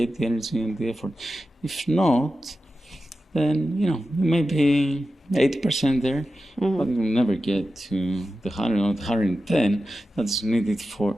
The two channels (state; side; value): normal; both; correlation 0.93